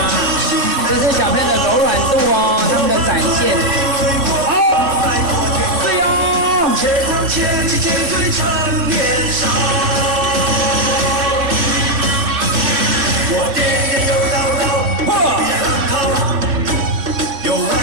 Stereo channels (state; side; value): late; left; 3.6 ms